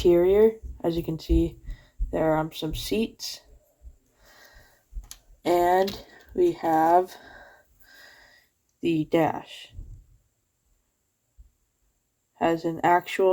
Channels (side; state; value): both; identical; correlation 1.00